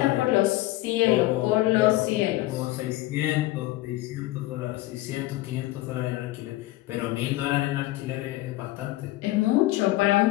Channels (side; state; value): right; quieter; 17.7 dB